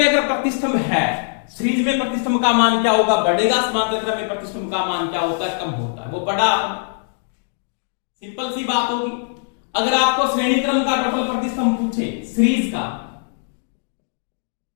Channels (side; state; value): right; silent; digital silence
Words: अगर प्रतिष्ठम है, सीरीज में प्रतिष्ठम का मान क्या होगा बढ़ेगा, समांतर क्रम में प्रतिष्ठम का मान क्या होता है कम होता है, वो पढ़ा, सिंपल सी बात होगी। अगर आपको श्रेणी क्रम का टोटल प्रतिष्ठम पूछे, सीरीज का